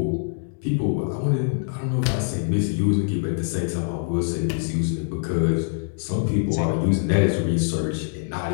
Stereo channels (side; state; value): right; silent; digital silence